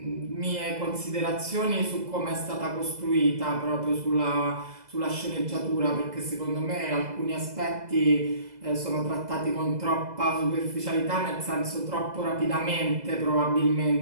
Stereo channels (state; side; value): late; left; 2.0 ms